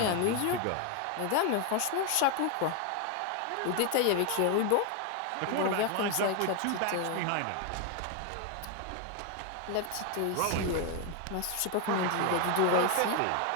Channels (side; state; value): both; different; correlation 0.01